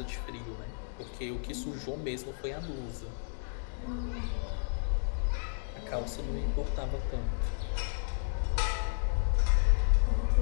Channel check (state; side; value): silent; right; digital silence